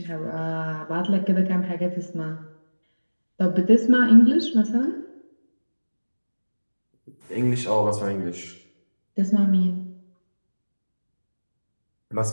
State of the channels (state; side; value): inverted; both; correlation -1.00